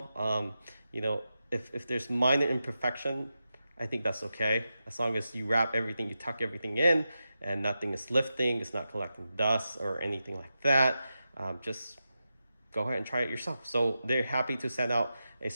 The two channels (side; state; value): both; inverted; correlation -0.90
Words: You know, if there's minor imperfection, I think that's okay. As long as you wrap everything, you tuck everything in, and nothing is lifting, it's not collecting dust or anything like that. Just go ahead and try it yourself. So they're happy to send out a